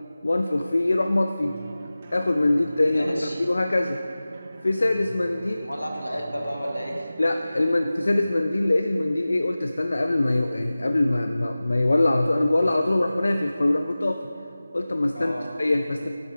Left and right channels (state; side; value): inverted; both; correlation -0.97